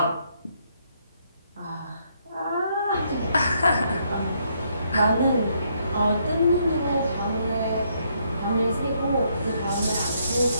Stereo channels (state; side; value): inverted; both; correlation -0.73